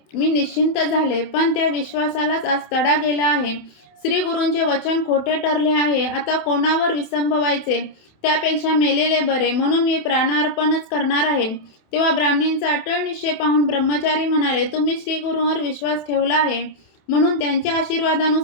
मी निश्चिंत झाले. पण त्या विश्वासालाच आज तडा गेला आहे. श्री गुरूंचे वचन खोटे ठरले आहे. आता कोणावर विसंबवायचे? त्यापेक्षा मेलेले बरे. म्हणून मी प्राणार्पणच करणार आहे. तेव्हा ब्राह्मणींचा अटळ निश्चय पाहून ब्रह्मचारी म्हणाले, तुम्ही श्री गुरूंवर विश्वास ठेवला आहे म्हणून त्यांच्या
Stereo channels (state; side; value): late; right; 27 ms